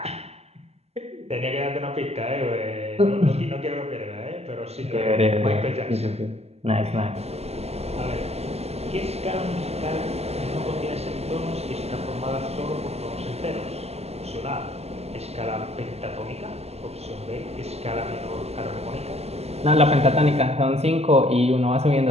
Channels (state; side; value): late; left; 0.30 ms